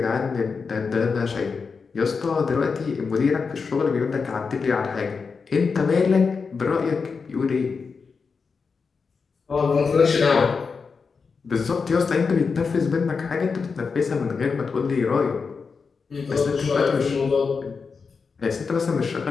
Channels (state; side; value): quieter; right; 5.1 dB